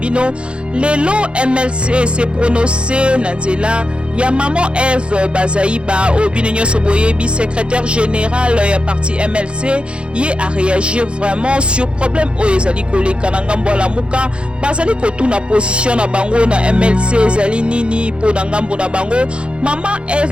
lelo MLC se prononcer na nzela ya maman Eve Bazaiba Obino Nyonso Boyebi, secrétaire général ya parti MLC, y a réagir vraiment sur problème o ezali koleka na ngambo la muka bazali kotuna position na bango na MLC ezali nini po na ngambo na bango mama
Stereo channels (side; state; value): left; late; 0.057 ms